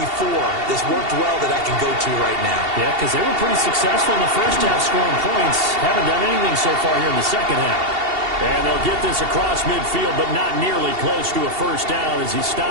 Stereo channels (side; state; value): left; late; 2.7 ms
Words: that's worked well that I can go to right now? Yeah, because they were pretty successful in the first half scoring points. Haven't done anything so far here in the second half. And they'll get this across midfield, but not nearly close to a first down as he